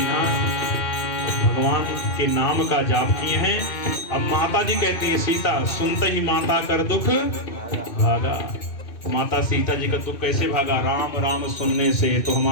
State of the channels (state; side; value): late; right; 2.5 ms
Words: भगवान के नाम का जाप किए हैं। अब माता जी कहती है सीता सुनते ही माता कर दुख भागा। माता सीता जी का दुख कैसे भागा? राम राम सुनने से तो